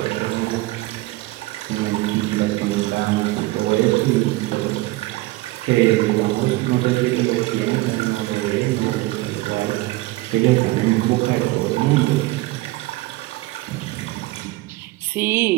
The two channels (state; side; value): quieter; left; 20.0 dB